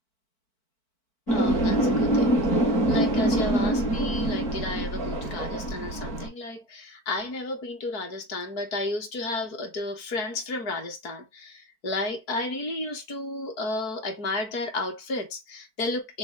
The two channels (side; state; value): right; late; 4.5 ms